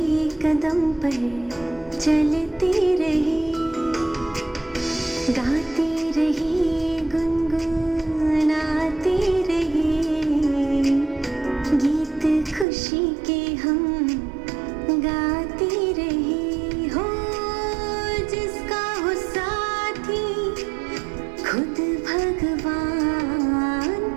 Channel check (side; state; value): left; drops out; at 12.7 s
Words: कदम पर चलते रहे। गाते रहे गुनगुनाते रहे गीत खुशी के हम गाते रहे। हो जिसका हो साथी खुद भगवान,